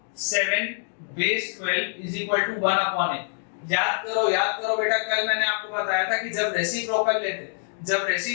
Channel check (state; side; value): silent; right; 62 dB below the other